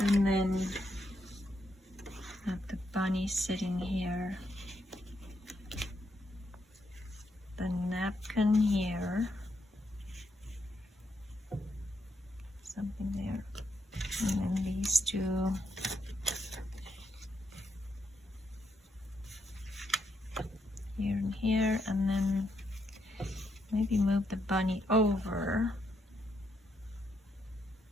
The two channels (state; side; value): normal; both; correlation 0.79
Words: then have the bunny sitting here, the napkin here, something there, and then these two here and here, and then maybe move the bunny over.